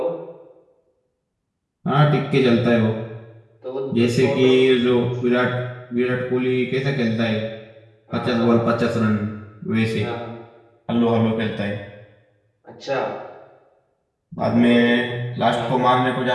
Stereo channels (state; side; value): identical; both; correlation 1.00